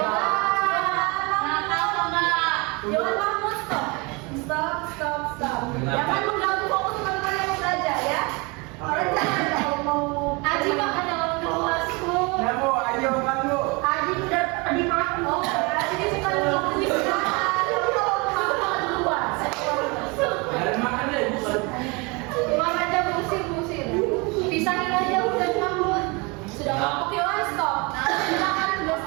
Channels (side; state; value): left; quieter; 28.2 dB